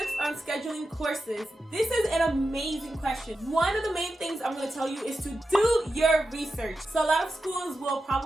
on scheduling courses? This is an amazing question. One of the main things I'm going to tell you is to do your research. So a lot of schools will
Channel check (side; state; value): both; normal; correlation 0.90